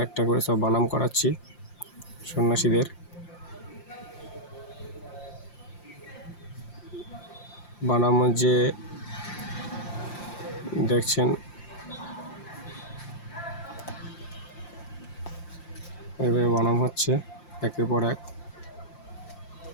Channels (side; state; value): right; late; 5.8 ms